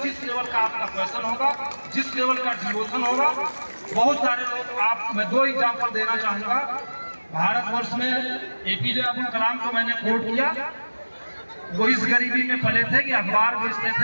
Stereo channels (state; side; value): inverted; both; correlation -1.00